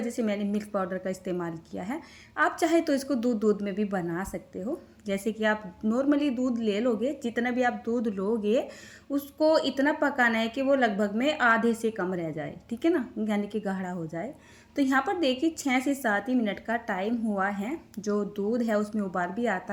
से मैंने मिल्क पाउडर का इस्तेमाल किया है। आप चाहे तो इसको दूध में भी बना सकते हो। जैसे कि आप नॉर्मली दूध ले लोगे, जितना भी आप दूध लोगे उसको इतना पकाना है कि वो लगभग में आधे से कम रह जाए। ठीक है ना, यानी कि गाढ़ा हो जाए। तो यहाँ पर देखिए 6 से 7 ही मिनट का टाइम हुआ है। जो दूध है उसमें उबाल भी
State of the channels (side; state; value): both; identical; correlation 1.00